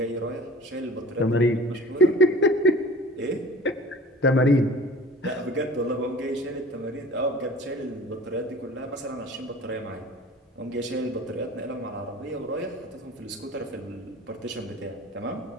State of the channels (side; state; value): both; normal; correlation 0.43